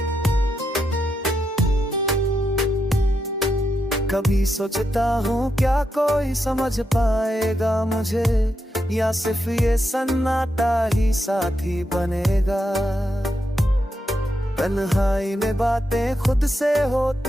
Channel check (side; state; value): both; normal; correlation 0.84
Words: कभी सोचता हूँ क्या कोई समझ पाएगा मुझे, या सिर्फ ये सन्नाटा ही साथी बनेगा। तन्हाई में बातें खुद से